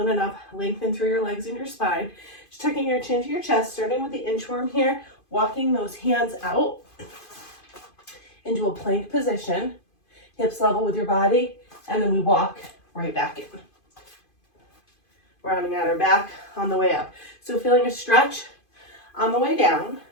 it up. Lengthen through your legs and your spine. Just tucking your chin to your chest, starting with the inchworm here. Walking those hands out into a plank position. Hips level with your body. And then we walk right back in. Rounding out our back on the way up. So feeling a stretch on the way down,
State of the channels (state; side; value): late; right; 2.5 ms